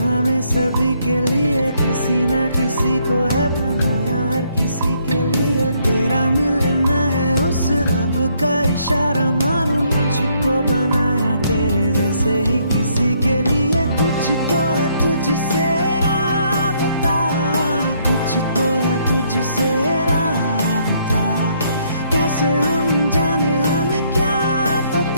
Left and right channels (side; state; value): both; inverted; correlation -0.70